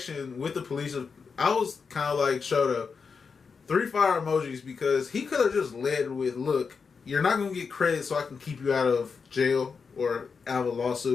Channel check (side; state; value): right; quieter; 5.4 dB